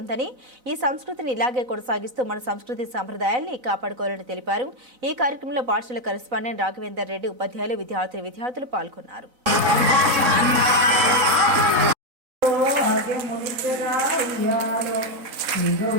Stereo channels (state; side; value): late; left; 4.0 ms